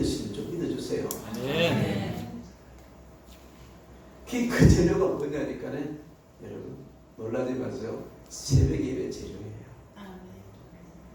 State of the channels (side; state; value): both; identical; correlation 1.00